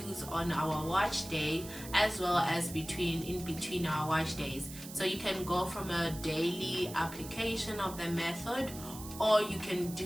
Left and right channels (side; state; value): right; noise; hiss, 13 dB below the sound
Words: on our wash day as well as in between our wash days. So you can go from a daily application of the method, or you can